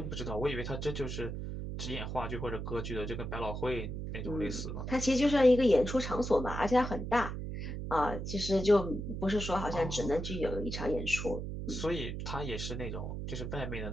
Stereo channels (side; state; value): right; noise; hum, 5 dB below the sound